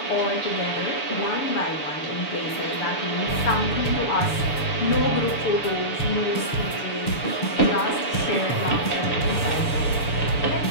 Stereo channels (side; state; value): right; late; 6.9 ms